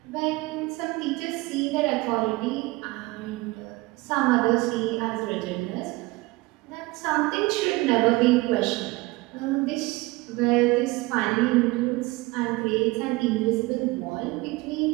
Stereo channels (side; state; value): left; quieter; 22.1 dB